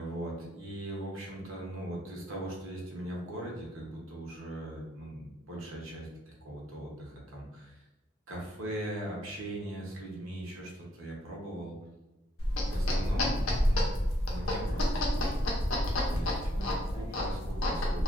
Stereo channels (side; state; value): both; normal; correlation 0.71